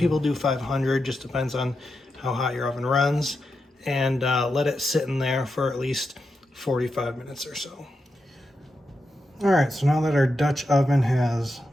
do 500. Just depends on how hot your oven runs. And let it sit in there for at least 45 minutes or so. All right, so now that our Dutch oven has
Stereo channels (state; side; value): normal; both; correlation 0.87